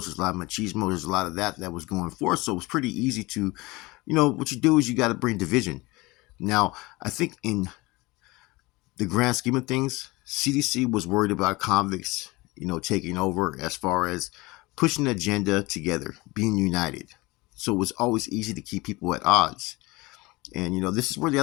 there's a lot of machismo, there's a lot of that was going forth. So it's pretty easy to, what you do is you got to bring division. Now, I think in the grand scheme of things, CDC was worried about convicts, taking over as far as pushing an agenda together, being united. So it was always easy to keep people at odds. And, this is where the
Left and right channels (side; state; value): right; quieter; 22.4 dB